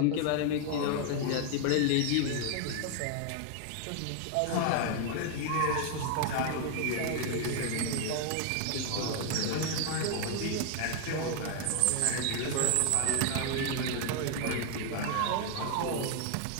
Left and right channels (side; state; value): both; different; correlation 0.00